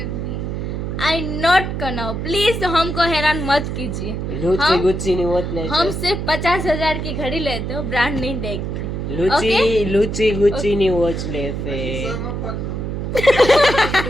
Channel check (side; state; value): right; noise; hum, 4 dB below the sound